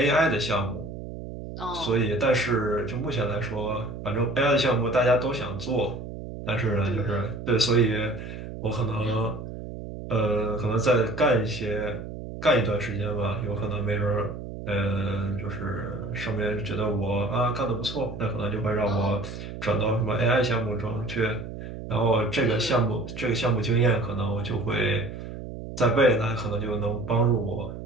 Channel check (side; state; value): right; noise; hum, 10 dB below the sound